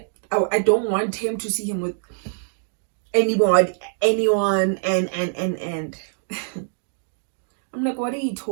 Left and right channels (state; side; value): silent; left; digital silence